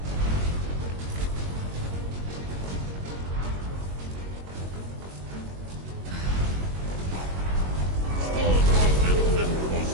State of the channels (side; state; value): left; late; 22 ms